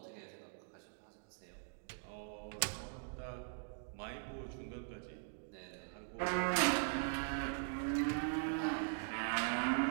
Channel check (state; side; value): silent; left; digital silence